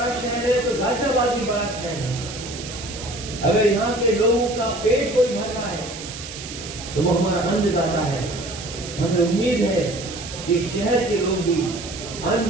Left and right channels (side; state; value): right; noise; hiss, 11 dB below the sound